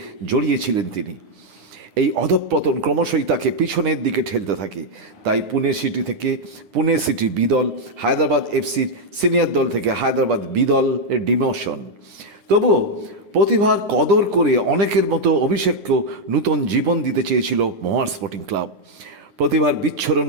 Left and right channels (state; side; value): late; left; 10 ms